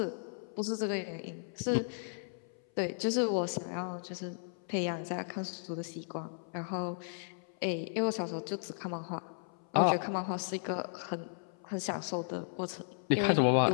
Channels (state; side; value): silent; right; 54 dB below the other